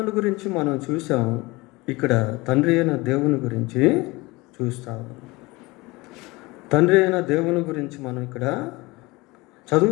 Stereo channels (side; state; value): right; quieter; 22.9 dB